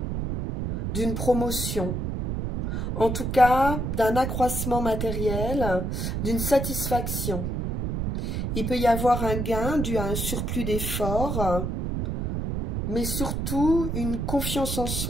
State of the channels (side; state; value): right; noise; rumble, 1 dB below the sound